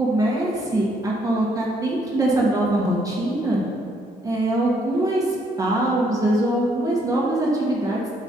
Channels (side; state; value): both; normal; correlation 0.70